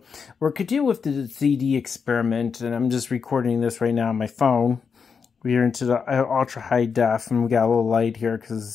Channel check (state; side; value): quieter; right; 5.9 dB